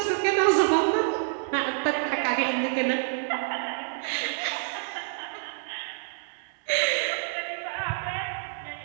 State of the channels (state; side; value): silent; left; digital silence